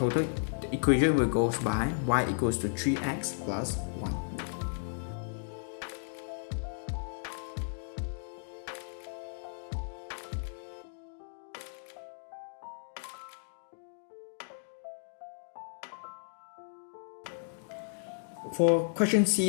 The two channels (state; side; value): silent; right; digital silence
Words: equation will go by y equals to 3x plus 1. For question